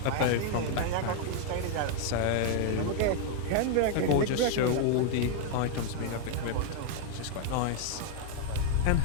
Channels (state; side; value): different; both; correlation 0.00